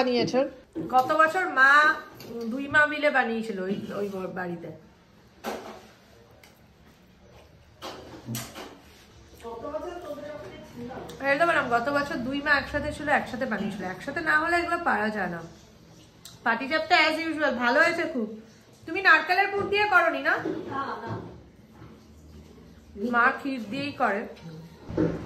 গত বছর মা 2 মা মিলে বানিয়েছিল ওই বাড়িতে। গত বছর 2 মা একসাথে ছিল, একসাথে বানিয়েছিল। একসাথে না হলে এগুলো পারা যায় না। পাটিসাপটা অ্যাজ ইউজুয়াল ভালো হয়েছে খুব। তুমি নারকেলের পুর দিয়ে করনি না? মা ক্ষীর দিয়েই করে।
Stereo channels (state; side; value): identical; both; correlation 1.00